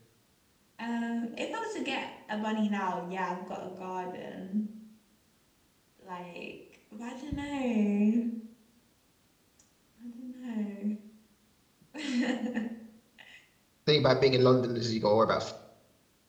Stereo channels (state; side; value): identical; both; correlation 1.00